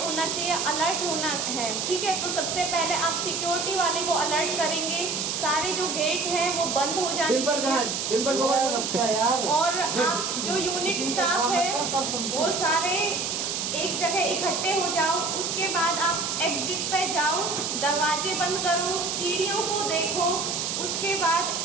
होना चाहिए, अलर्ट होना है, ठीक है। तो सबसे पहले आप सिक्योरिटी वाले को अलर्ट करेंगे, सारे जो गेट हैं वो बंद हो जाने और आप जो यूनिट स्टाफ है वो सारे एक जगह इकट्ठे हो जाओ। उसके बाद आप एग्जिट पे जाओ, दरवाजे बंद करो, सीढ़ियों को देखो। उसके बाद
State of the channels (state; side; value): noise; right; hiss, 1 dB below the sound